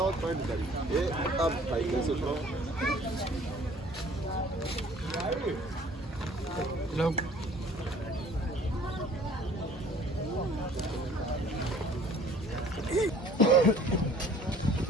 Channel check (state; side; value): normal; both; correlation 0.53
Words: पॉइंट करी ये अब भाई कैसे उतरो